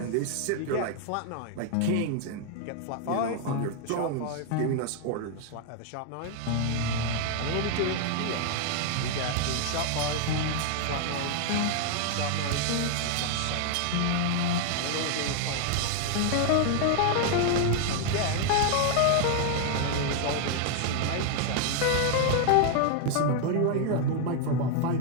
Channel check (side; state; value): both; different; correlation 0.00